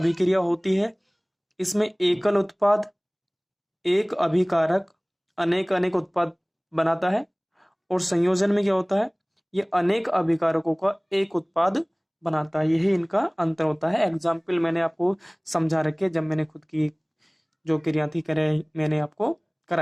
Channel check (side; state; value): both; identical; correlation 1.00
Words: होती है इसमें एकल उत्पाद, एक अभिकारक अनेक उत्पाद बनाता है और संयोजन में क्या होता है, ये अनेक अभिकारकों का एक उत्पाद बनाता है। यही इनका अंतर होता है। एग्जाम्पल मैंने आपको समझा रखे जब मैंने खुद की जो क्रिया थी मैंने आपको